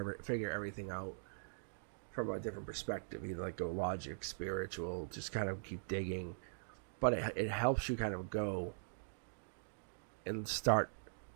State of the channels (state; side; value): silent; left; digital silence